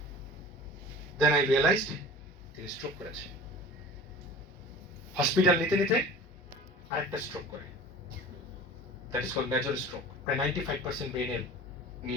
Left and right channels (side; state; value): both; normal; correlation 0.40